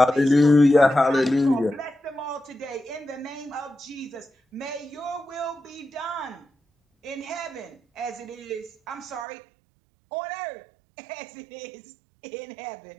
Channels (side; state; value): left; drops out; at 9.2 s